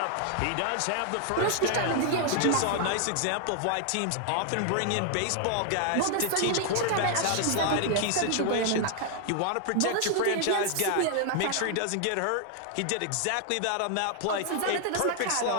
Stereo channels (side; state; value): both; different; correlation 0.00